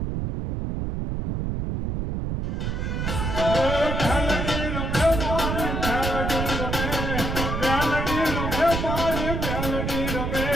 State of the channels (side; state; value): right; noise; rumble, 1 dB below the sound